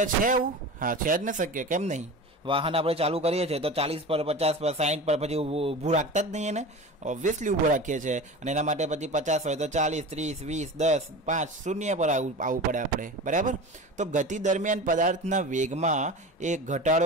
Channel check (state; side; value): normal; both; correlation 0.32